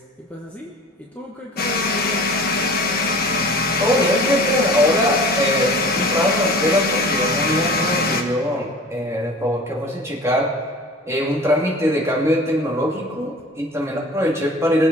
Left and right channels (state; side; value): normal; both; correlation 0.42